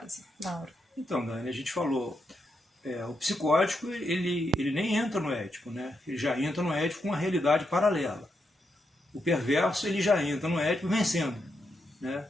Mauro? Então, Dani, a gente falou, o psicótico ele nem entra no ético, né? Ele já entra no ético com uma realidade paralela. O perverso ele já entra no ético vencendo, né?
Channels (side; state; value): both; normal; correlation 0.83